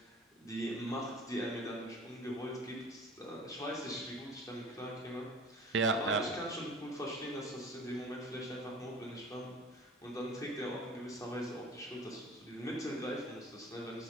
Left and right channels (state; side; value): normal; both; correlation 0.44